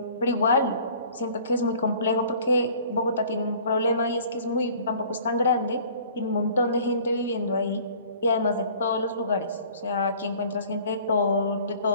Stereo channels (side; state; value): both; inverted; correlation -0.50